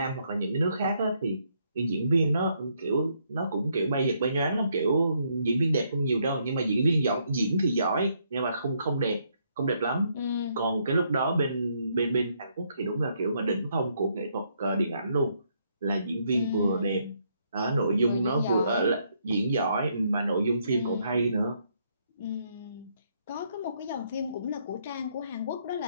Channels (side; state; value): both; inverted; correlation -0.73